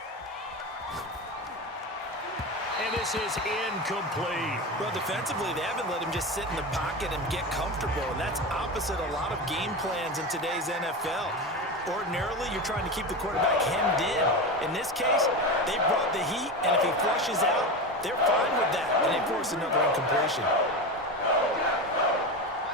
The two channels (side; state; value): both; normal; correlation 0.22